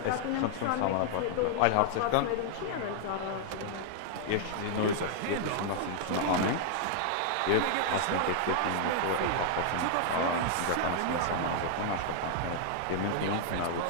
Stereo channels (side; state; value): both; different; correlation -0.01